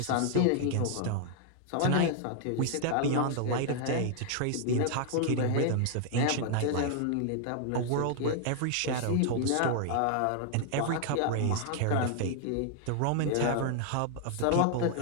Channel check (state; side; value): different; both; correlation 0.00